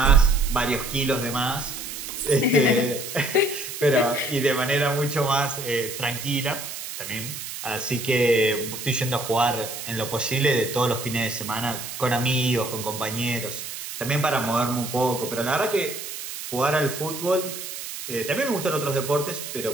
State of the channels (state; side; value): noise; right; hiss, 8 dB below the sound